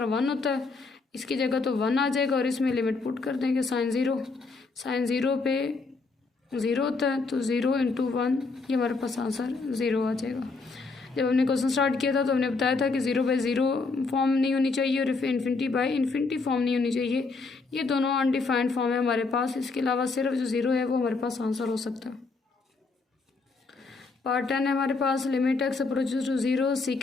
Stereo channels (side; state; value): right; quieter; 4.0 dB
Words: 1 होता है, इसकी जगह तो 1 आ जाएगा और इसमें लिमिट पुट कर देंगे साइन 0 पे 0 होता है तो 0 इंटू 1, ये हमारे पास आंसर 0 आ जाएगा। जब हमने क्वेश्चन स्टार्ट किया था तो हमने बताया था कि 0/0 फॉर्म नहीं होनी चाहिए और इन्फिनिटी बाई इन्फिनिटी फॉर्म नहीं होनी चाहिए। ये दोनों अनडिफाइंड फॉर्म है हमारे पास, इसके अलावा सिर्फ जो 0 है वो हमारे पास आंसर हो सकता है। पार्ट 10 है हमारे पास limit x approaches to 0